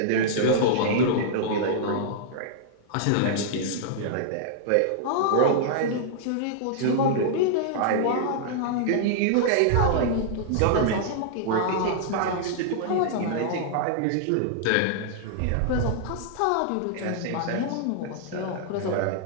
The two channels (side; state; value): both; different; correlation -0.01